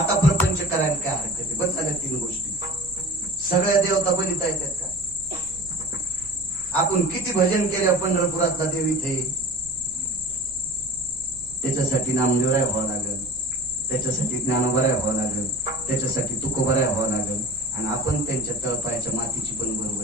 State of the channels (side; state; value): right; noise; rumble, 20 dB below the sound